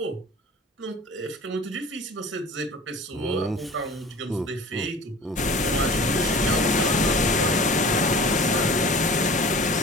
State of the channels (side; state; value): both; normal; correlation 0.41